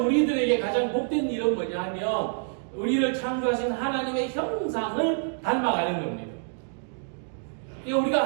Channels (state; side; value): silent; left; digital silence